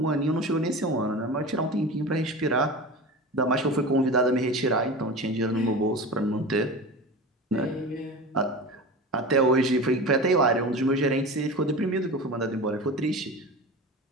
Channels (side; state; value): both; normal; correlation 0.30